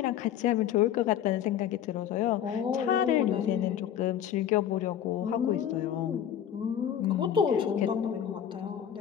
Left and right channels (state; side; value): quieter; right; 9.9 dB